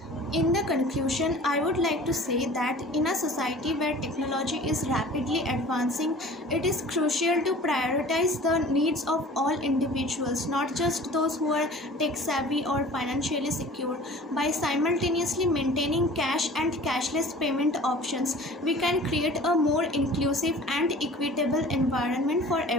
In the conclusion, I would like to say that in a society where technology is rapidly advancing, it is crucial to prioritize the needs of all individuals, not just those who are tech savvy or financially secure. By simultaneously maintaining cash and cashless payment options, we can create a more inclusive and equitable environment for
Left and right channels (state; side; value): normal; both; correlation 0.44